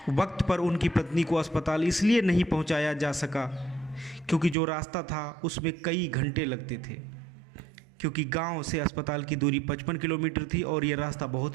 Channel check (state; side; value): drops out; left; at 4.5 s